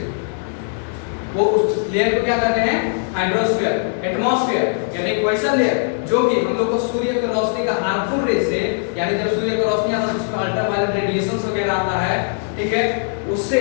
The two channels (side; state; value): right; silent; digital silence